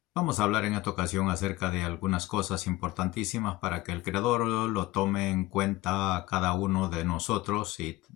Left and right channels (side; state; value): right; quieter; 18.2 dB